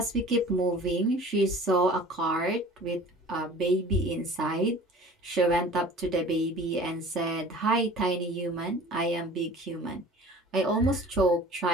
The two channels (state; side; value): normal; both; correlation 0.44